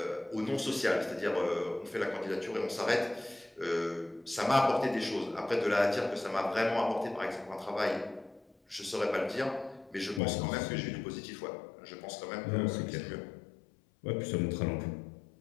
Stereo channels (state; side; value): drops out; right; at 10.2 s